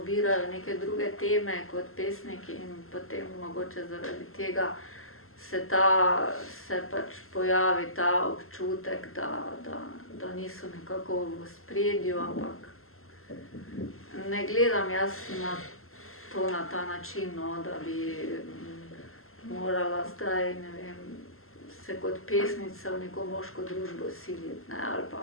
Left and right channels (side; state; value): right; late; 0.62 ms